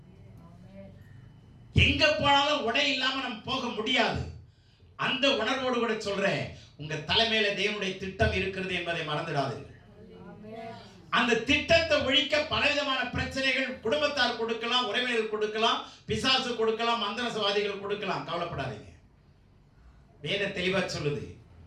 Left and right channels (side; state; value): both; identical; correlation 1.00